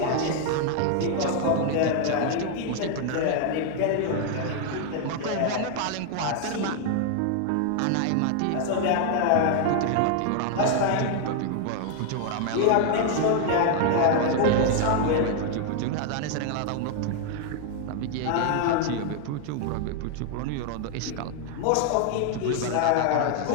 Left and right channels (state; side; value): different; both; correlation 0.00